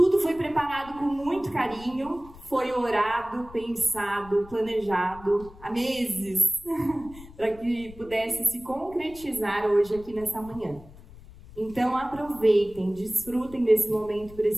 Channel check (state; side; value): noise; left; rumble, 20 dB below the sound